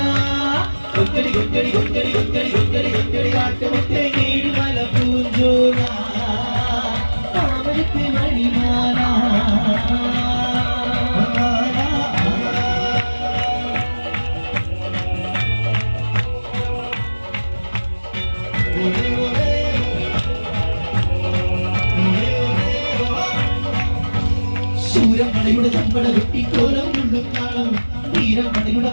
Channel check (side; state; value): both; inverted; correlation -1.00